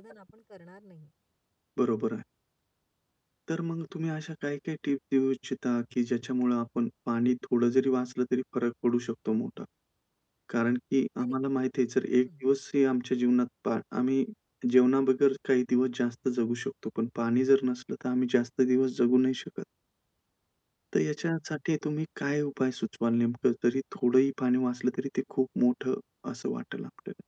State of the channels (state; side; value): identical; both; correlation 1.00